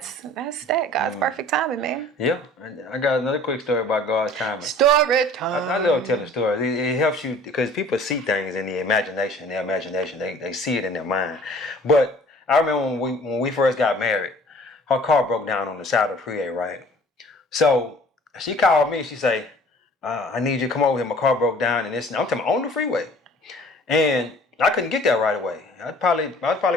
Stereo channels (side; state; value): both; normal; correlation 0.50